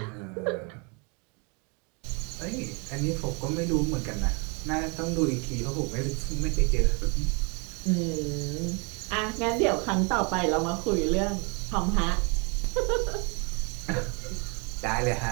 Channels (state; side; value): quieter; left; 32.5 dB